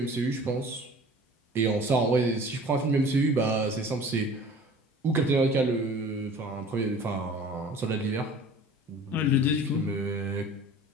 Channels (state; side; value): normal; both; correlation 0.45